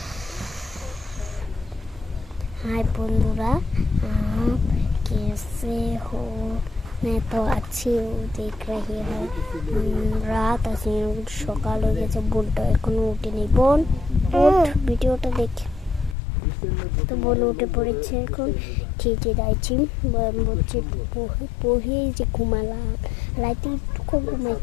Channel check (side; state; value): right; drops out; at 16.2 s